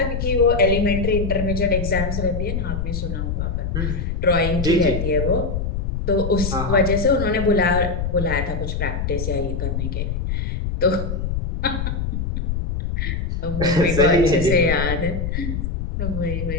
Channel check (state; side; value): noise; left; rumble, 2 dB below the sound